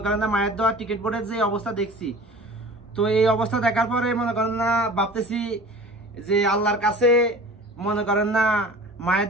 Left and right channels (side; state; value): both; normal; correlation 0.41